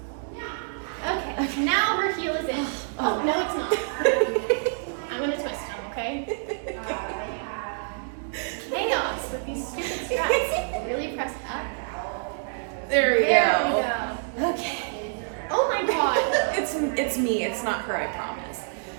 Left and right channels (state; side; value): silent; left; digital silence